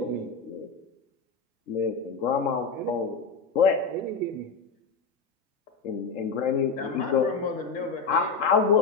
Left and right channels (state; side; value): quieter; right; 4.8 dB